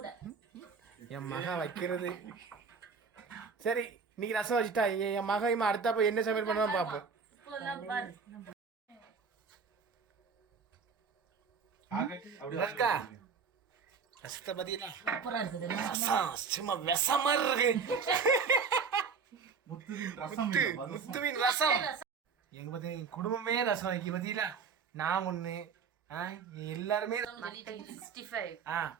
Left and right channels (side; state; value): left; quieter; 5.6 dB